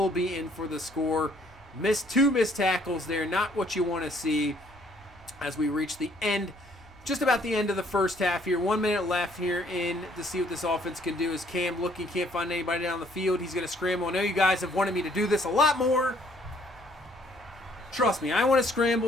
be in for the score. Two missed tackles there, not what you want to see as we reach the end, just about the end of the first half here. 1 minute left here to see what this offense can do. As Cam looking, can't find anybody down the field. He's going to scramble. I know you guys have wanted me to do this a lot more. Trust me, I want to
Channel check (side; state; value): both; normal; correlation 0.63